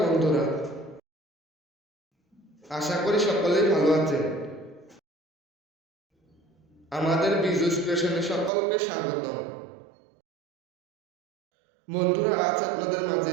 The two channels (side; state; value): left; drops out; at 8.5 s